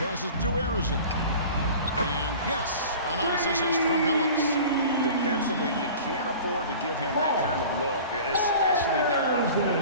to Arizon. And yes, a nice assist from Phillips. Defensively, you can't afford to give him that kind of look, especially down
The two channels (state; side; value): inverted; both; correlation -0.40